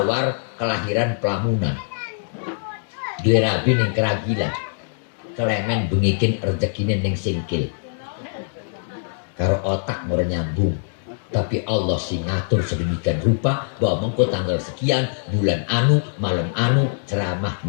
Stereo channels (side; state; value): right; silent; digital silence